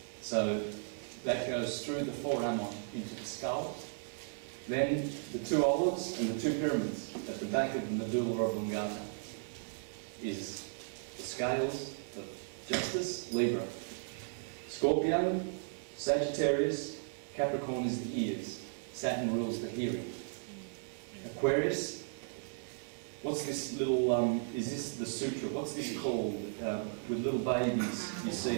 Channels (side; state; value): left; silent; digital silence